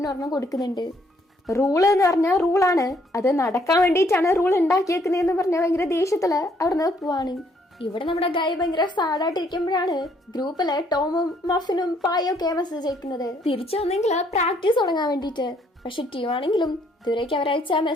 ഒരെണ്ണം കൊടുക്കുന്നുണ്ട്. റൂള് എന്ന് പറഞ്ഞാൽ റൂളാണ്, അത് നടക്കാൻ വേണ്ടിയിട്ടാണ് റൂൾ ഉണ്ടാക്കിയേക്കുന്നതെന്ന് പറഞ്ഞാൽ ഭയങ്കര ദേഷ്യത്തില് അവിടുന്ന് പോവാണ്. ഇവിടെ നമ്മുടെ ഗായ് ഭയങ്കര സാഡായിട്ടിരിക്കുമ്പോഴാണ് ഗ്രൂപ്പില് ടോമും മഫിനും പായും ഒക്കെ മെസ്സേജ് അയക്കുന്നത് തിരിച്ചു വന്നെങ്കിൽ പ്രാക്ടീസ് തുടങ്ങാൻ വേണ്ടിയിട്ട്. പക്ഷെ ട്യൂ ആണെങ്കിലും ഇതുവരേക്ക് അവരയച്ച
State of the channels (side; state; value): both; normal; correlation 0.67